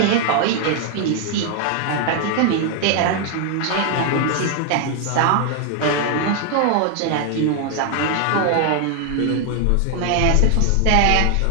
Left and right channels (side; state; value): both; different; correlation 0.00